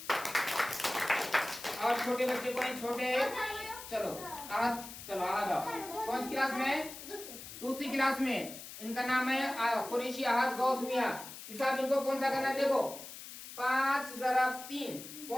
और छोटे बच्चे को छोटे। चलो चलो आ जाओ। कौन सी क्लास में? दूसरी क्लास में। इनका नाम है कुरैशी अहद गौस मियां। हिसाब इनको कौन सा करना है? देखो 5 ज़रब 3।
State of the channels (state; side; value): noise; left; hiss, 12 dB below the sound